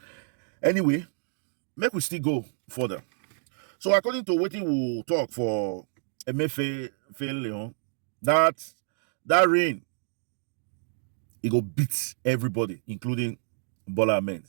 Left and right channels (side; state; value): left; silent; 59 dB below the other